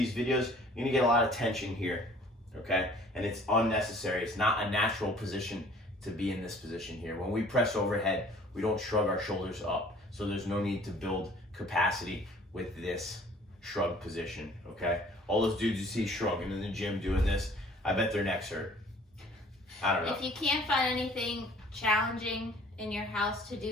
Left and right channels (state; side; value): normal; both; correlation 0.53